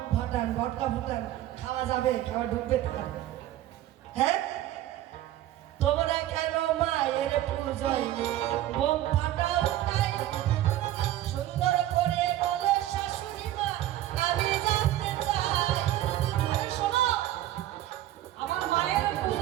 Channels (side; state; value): left; quieter; 13.9 dB